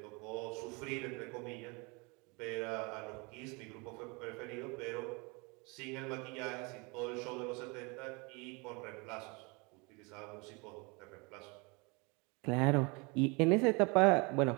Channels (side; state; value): left; quieter; 28.9 dB